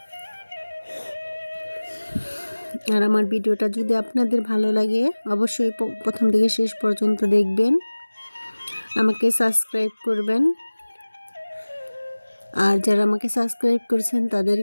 আর আমার ভিডিওটা যদি আপনাদের ভালো লাগে অবশ্যই প্রথম থেকে শেষ পর্যন্ত দেখবেন, আমাকে সাবস্ক্রাইব করবেন। আর যারা আমাকে সাবস্ক্রাইব করেছেন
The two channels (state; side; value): inverted; both; correlation -1.00